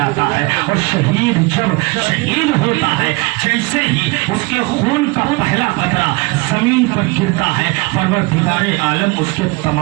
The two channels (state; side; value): quieter; left; 25.3 dB